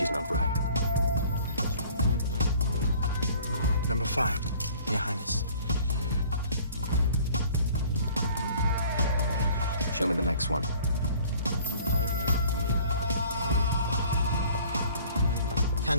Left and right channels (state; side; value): inverted; both; correlation -0.52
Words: not right. Number 5, Your Highness. Show me the next one.